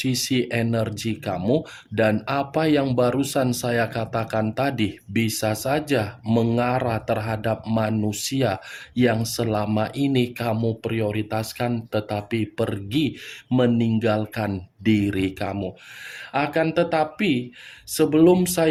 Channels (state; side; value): identical; both; correlation 1.00